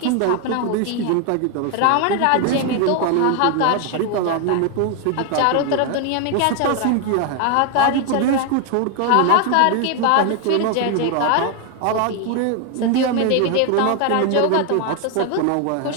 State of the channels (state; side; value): different; both; correlation 0.01